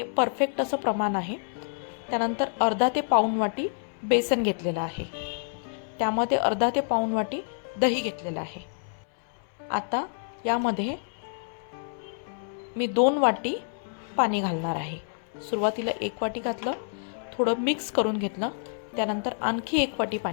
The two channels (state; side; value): silent; right; 59 dB below the other